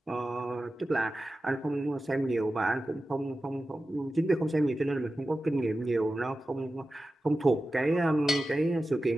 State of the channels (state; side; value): normal; both; correlation 0.94